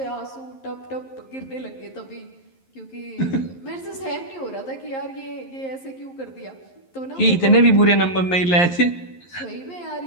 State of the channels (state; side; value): late; right; 11 ms